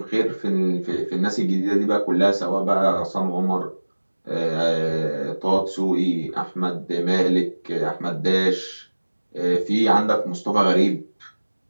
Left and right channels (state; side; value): inverted; both; correlation -1.00